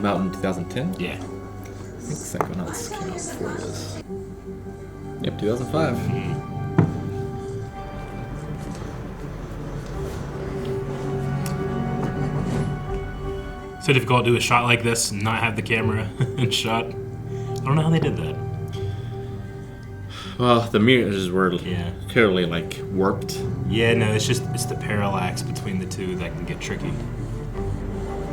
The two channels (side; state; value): both; identical; correlation 1.00